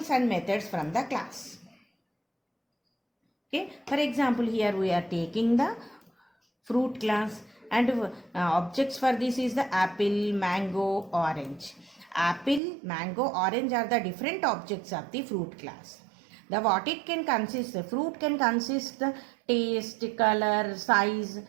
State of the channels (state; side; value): drops out; left; at 12.6 s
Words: and methods from the class. Okay, for example, here we are taking the fruit class, and objects for this is the apple, mango, orange. Apple, mango, orange are the different objects of the fruit class. What it can consist, the fruit can consist the taste, color, size